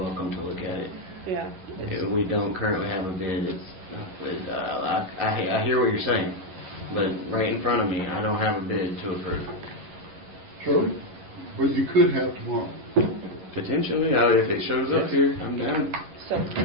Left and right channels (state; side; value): late; left; 11 ms